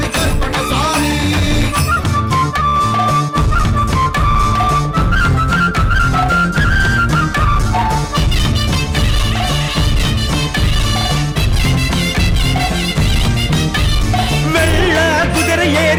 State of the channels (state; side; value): identical; both; correlation 1.00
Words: கருப்பண்ணசாமி வெள்ள குதிரை